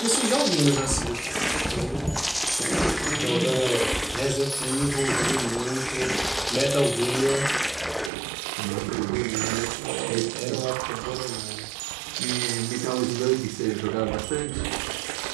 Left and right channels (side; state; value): left; drops out; at 8.1 s